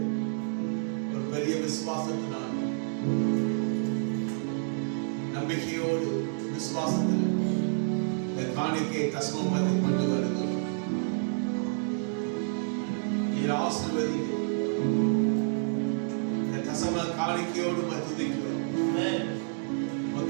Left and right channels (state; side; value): silent; left; digital silence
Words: ஒரு பெரிய விசுவாசத்தினால், நம்பிக்கையோடு விசுவாசத்தில் இந்த காணிக்கையை தசமபத்தை கொண்டு வருகிறோம். நீர் ஆசீர்வதிங்க. இந்த தசம காணிக்கையோடு துதிக்கிறோம்.